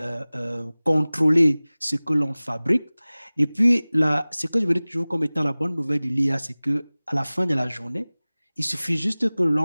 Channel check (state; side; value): inverted; both; correlation -0.99